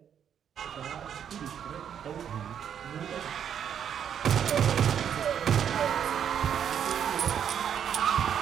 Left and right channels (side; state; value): left; quieter; 8.6 dB